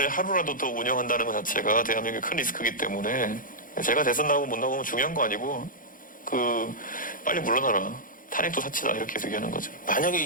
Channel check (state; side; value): late; right; 0.40 ms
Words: 하루라도 더 운영한다는 것 자체가 대한민국의 큰 리스크이기 때문에 제가 대선 나오고 못 나오면 중요한 거 아니고 빨리 물러나라. 탄핵도 사치다 이렇게 계속 얘기하는 거죠. 만약에